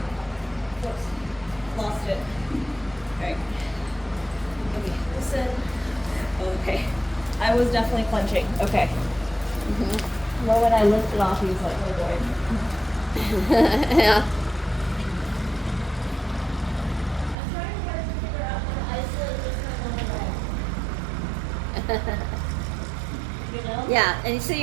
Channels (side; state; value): left; drops out; at 17.4 s